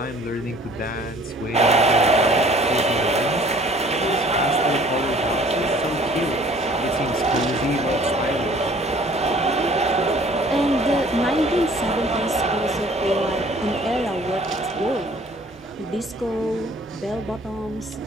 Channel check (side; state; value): both; normal; correlation 0.54